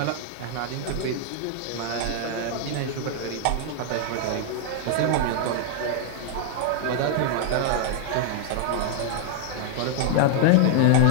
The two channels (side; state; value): both; different; correlation 0.00